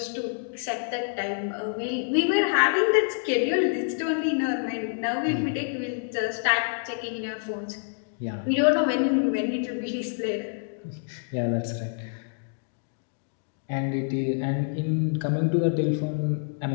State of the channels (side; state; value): right; silent; digital silence